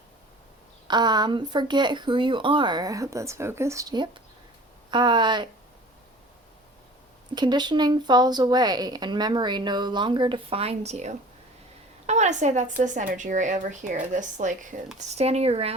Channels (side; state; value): both; normal; correlation 0.44